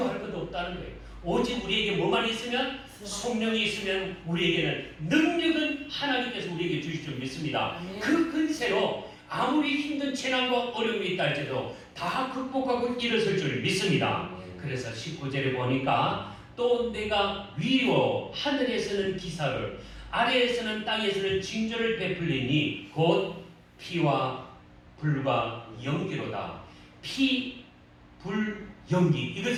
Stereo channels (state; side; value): identical; both; correlation 1.00